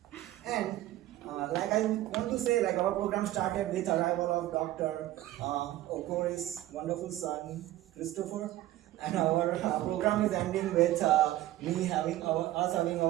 And like I want to say, like our program started with arrival of Dr. Okori's wonderful son, Christopher. And our program is ending with us having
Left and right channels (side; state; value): left; quieter; 15.0 dB